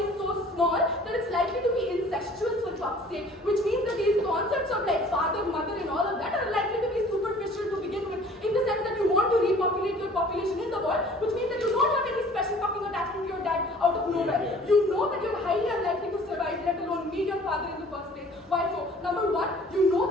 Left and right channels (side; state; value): both; normal; correlation 0.51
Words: so small that it's likely to be incestuous for fuck's sake, which means that these concepts of like father, mother and all of that are likely to be superficial to begin with, in the sense that you want to repopulate your population in the world, which means that you don't have any special fucking attachment to your dad out of nowhere. You know that you're highly unlikely to survive, let alone meet your father in the first place. Why so? Number 1, you know